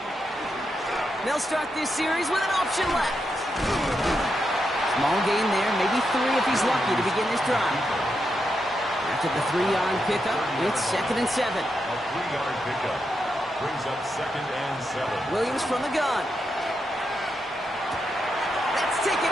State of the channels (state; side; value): normal; both; correlation 0.84